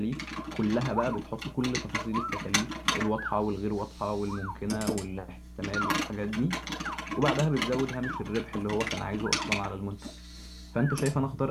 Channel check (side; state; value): both; identical; correlation 1.00